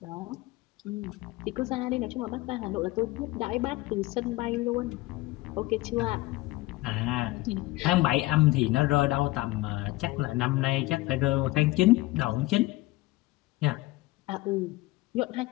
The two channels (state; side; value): quieter; right; 19.4 dB